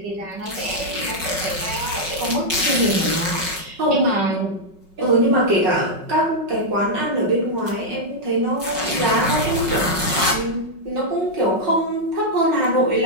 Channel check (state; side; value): late; left; 5.4 ms